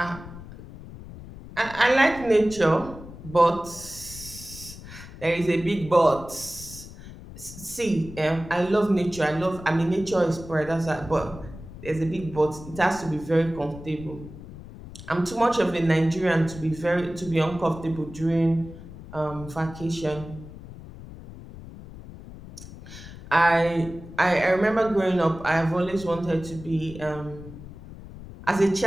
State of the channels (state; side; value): noise; left; rumble, 15 dB below the sound